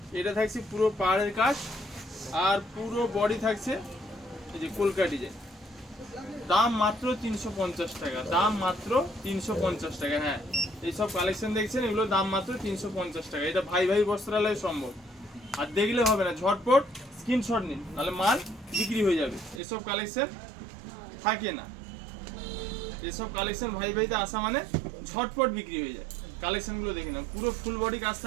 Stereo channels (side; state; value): left; drops out; at 19.6 s